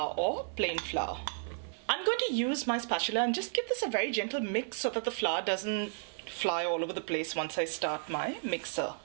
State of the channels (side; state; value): left; silent; 56 dB below the other